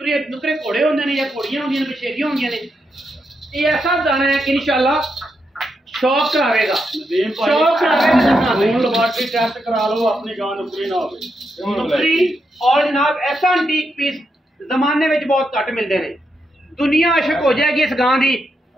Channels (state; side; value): normal; both; correlation 0.83